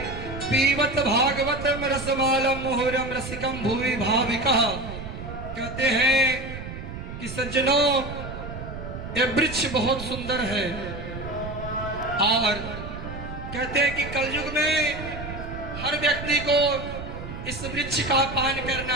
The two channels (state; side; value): noise; right; rumble, 9 dB below the sound